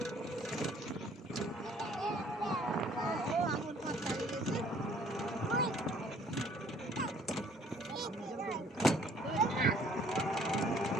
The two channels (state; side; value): normal; both; correlation 0.58